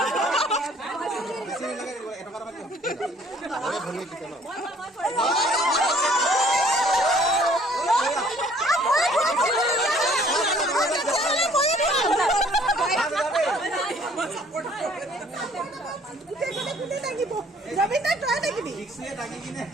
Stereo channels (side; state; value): both; normal; correlation 0.58